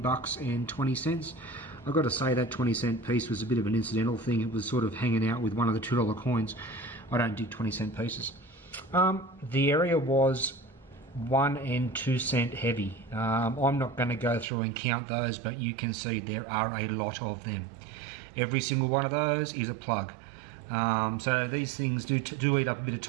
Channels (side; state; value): left; drops out; at 14.5 s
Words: bucks and 20 cents. I've got to say that 20-cent piece was a bit of an incidental thing. It was sort of hanging out with one of the $2 coins. I don't dig 20-cent pieces. The area was 1 and 2 cent heavy. I'm not going to go through and count those, but you can see there are a lot of them. Every single one of those is a plug. So these things do eat up a bit of